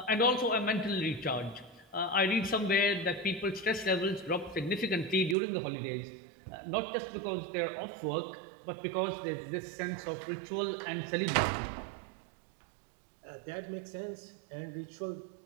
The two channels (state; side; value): drops out; left; at 5.4 s